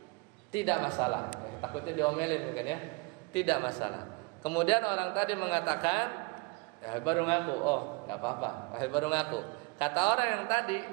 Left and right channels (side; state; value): left; quieter; 28.5 dB